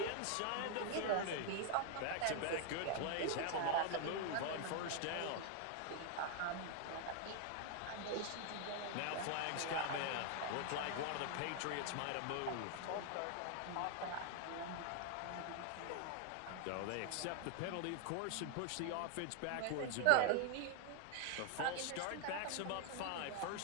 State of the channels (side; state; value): both; different; correlation 0.00